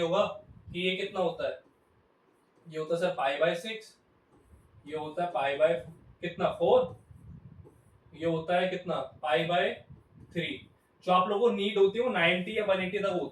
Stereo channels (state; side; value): identical; both; correlation 1.00